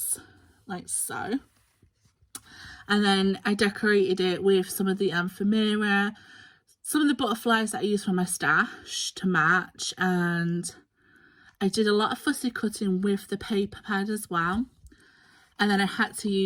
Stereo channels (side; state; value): both; identical; correlation 1.00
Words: like so. And then I decorated it with some of the ephemera, some of the butterflies that I used from my stash to match, and I did a lot of fussy cutting with the paper pad as well. And then I had to